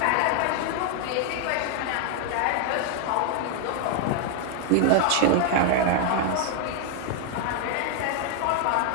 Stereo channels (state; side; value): different; both; correlation 0.00